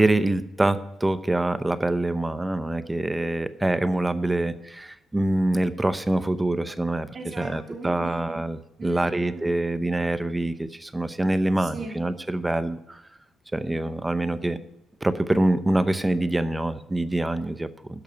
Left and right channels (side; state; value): both; normal; correlation 0.97